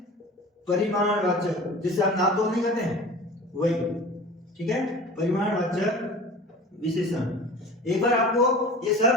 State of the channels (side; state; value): both; normal; correlation 0.38